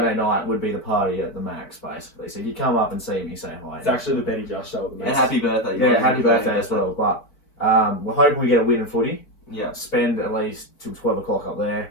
night would be the party at the Max, basically. So you come up and see me, say hi. It's actually the Betty Just show at the And Max. happy birthday. Yeah, happy birthday as well. But we're hoping we get a win in footy. Yeah. Spend at least till 12 o'clock up there.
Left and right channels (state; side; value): late; right; 4.7 ms